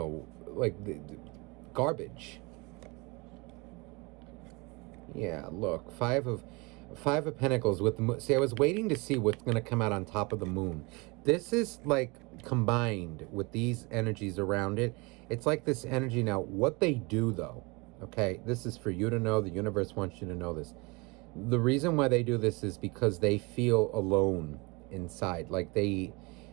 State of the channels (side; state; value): left; quieter; 27.0 dB